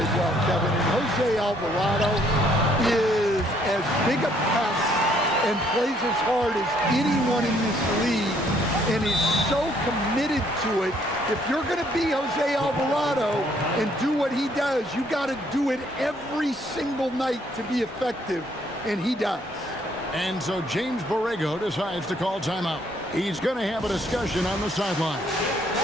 well, Kevin. And Jose Alvarado is as big a pest and plays as hard as anyone in this league and is so committed to it. If you're going to be Jose Alvarado and do what he does, you got to do it every single night to be effective, and he does. And so James Borrego decides to call timeout. He's going to have a discussion on the sideline.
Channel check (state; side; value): normal; both; correlation 0.66